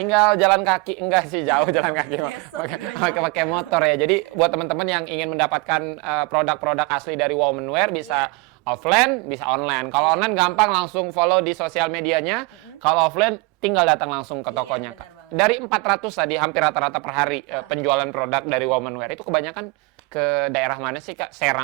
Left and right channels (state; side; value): quieter; left; 27.2 dB